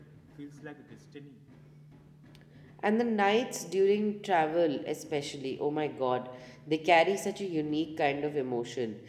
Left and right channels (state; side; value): identical; both; correlation 1.00